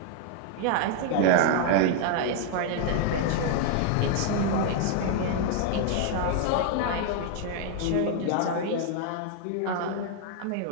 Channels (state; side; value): different; both; correlation 0.00